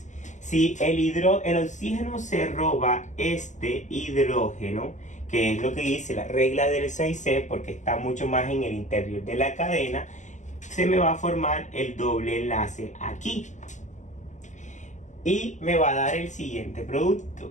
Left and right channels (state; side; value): late; right; 0.35 ms